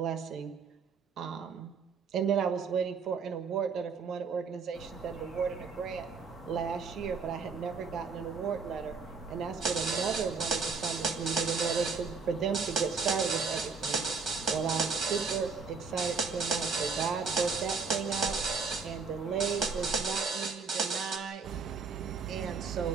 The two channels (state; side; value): quieter; left; 5.0 dB